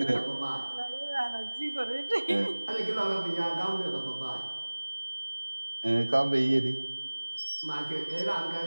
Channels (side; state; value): both; inverted; correlation -1.00